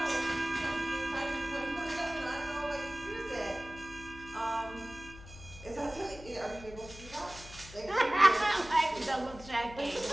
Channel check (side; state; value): left; noise; hum, 16 dB below the sound